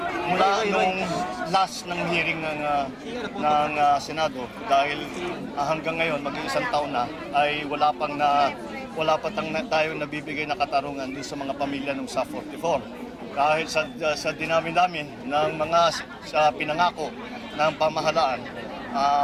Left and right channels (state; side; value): identical; both; correlation 1.00